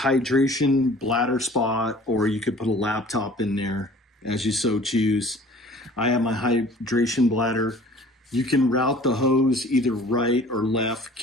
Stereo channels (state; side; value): normal; both; correlation 0.48